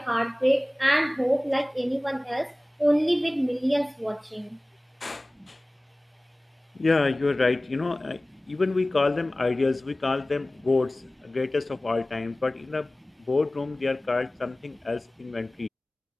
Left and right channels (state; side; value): normal; both; correlation 0.98